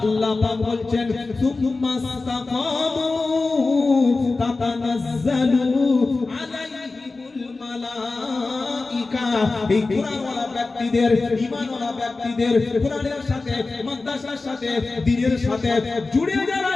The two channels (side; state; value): right; quieter; 3.6 dB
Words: আল্লাহ পাক বলছেন সুম্মা ইসতাকামু তাতানাজ্জালু আলাইহিমুল মালায়েকা। এই কোরআনওয়ালা ব্যক্তিদের, ঈমানওয়ালা ব্যক্তিদের, কোরআনের সাথে, মাদ্রাসার সাথে, দ্বীনের সাথে জুড়ে যারা